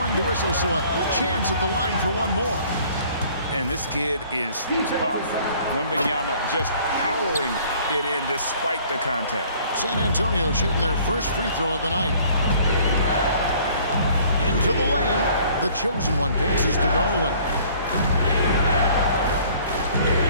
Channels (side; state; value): both; inverted; correlation -0.55